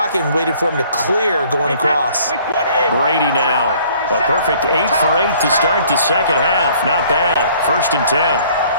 and waited for him to clear going across. Brady now. A perfect 8 for 8 to start the second half. Not bad. 1st and 10.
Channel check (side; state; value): both; inverted; correlation -0.57